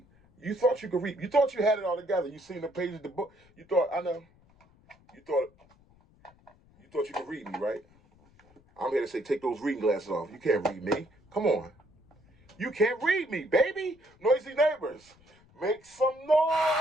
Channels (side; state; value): left; noise; rumble, 30 dB below the sound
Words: You thought you could read. You thought you had it all together. You seen the pages of the book. You thought, I know. You thought you could read me, right? I'm here to say, take those reading glasses off. You can't read me. Come on. You can't read me, baby. Noisy neighbors. Make some noise.